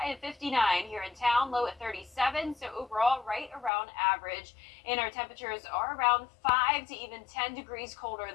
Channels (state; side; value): drops out; right; at 3.7 s